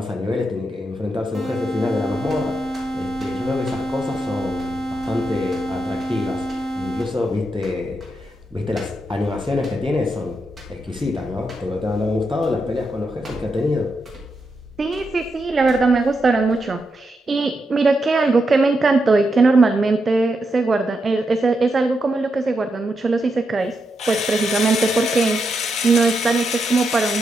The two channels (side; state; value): both; normal; correlation 0.84